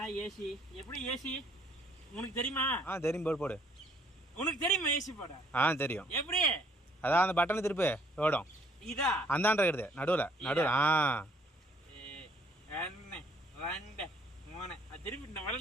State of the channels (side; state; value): both; normal; correlation 0.63